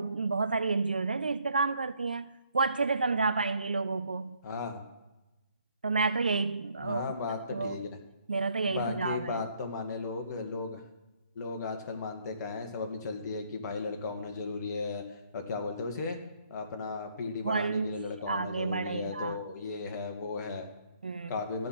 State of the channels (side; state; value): both; inverted; correlation -0.67